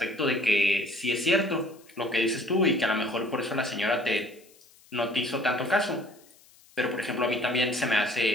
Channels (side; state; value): left; noise; hiss, 28 dB below the sound